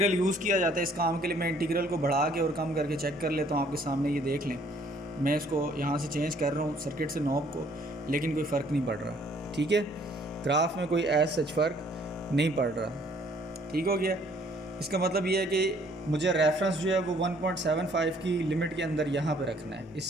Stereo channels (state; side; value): normal; both; correlation 0.61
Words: यूज़ किया जाता है इस काम के लिए, मैं इंटीग्रल को बढ़ा के और कम करके चेक कर लेता हूँ आपके सामने, ये देख लें, मैं इसको यहाँ से चेंज कर रहा हूँ सर्किट से नॉब को, लेकिन कोई फ़र्क नहीं पड़ रहा, ठीक है, ग्राफ में कोई एज सच फ़र्क नहीं पड़ रहा, ठीक हो गया। इसका मतलब ये है कि मुझे रेफरेंस जो है वो 1.75 की लिमिट के अंदर यहाँ पे रखना है,